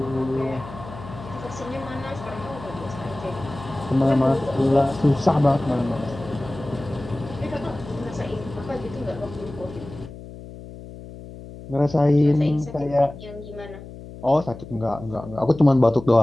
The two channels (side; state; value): left; noise; hum, 14 dB below the sound